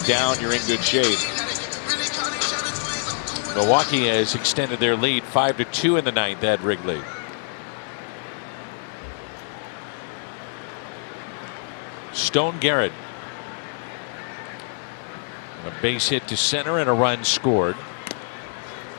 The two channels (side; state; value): right; silent; 57 dB below the other